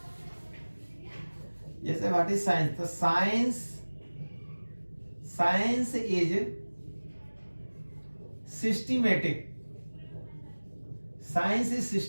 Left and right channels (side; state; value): both; inverted; correlation -1.00